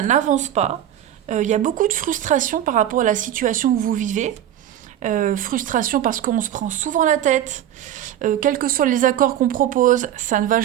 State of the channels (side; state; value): left; quieter; 11.3 dB